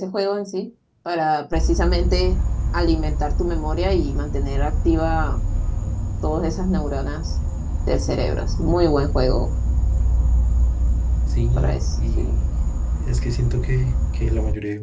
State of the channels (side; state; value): both; identical; correlation 1.00